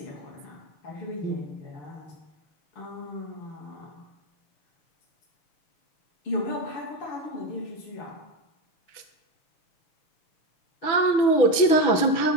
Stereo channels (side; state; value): right; late; 6.1 ms